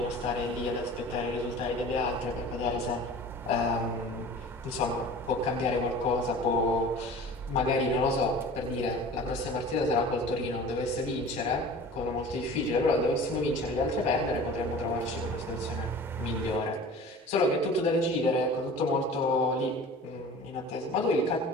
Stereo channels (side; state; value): both; normal; correlation 0.41